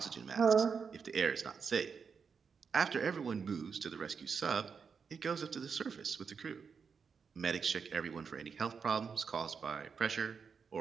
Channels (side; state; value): left; quieter; 6.0 dB